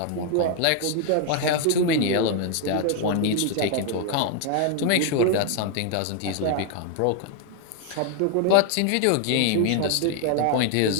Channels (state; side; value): different; both; correlation 0.00